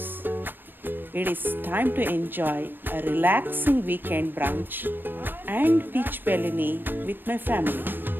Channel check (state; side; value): late; left; 0.094 ms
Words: It is time to enjoy a relaxing weekend brunch and peach Bellini with my family.